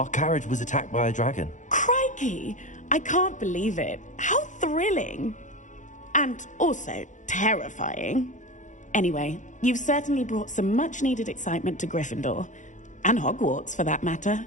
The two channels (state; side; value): late; right; 0.36 ms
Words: carriage was attacked by a dragon. Crikey! I can't believe it. How thrilling! And also terrifying. Anyway, you've certainly brought some much-needed excitement to Gryffindor. And Hogwarts, for that matter.